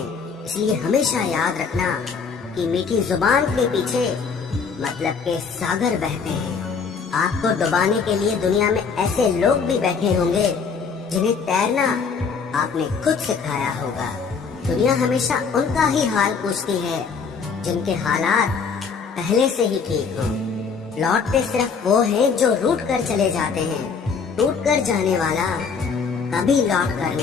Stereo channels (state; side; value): quieter; right; 5.6 dB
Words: इसलिए हमेशा याद रखना कि मीठी जुबान के पीछे मतलब के सागर बहते हैं। आपको डुबाने के लिए दुनिया में ऐसे लोग भी बैठे होंगे जिन्हें तैरना आपने खुद सिखाया होगा। दुनिया हमेशा उनका ही हाल पूछती है जिनके हालात पहले से ही ठीक हो। लौटते सिर्फ वो हैं जो रूठ कर चले जाते हैं। टूट कर जाने वाला कभी लौट कर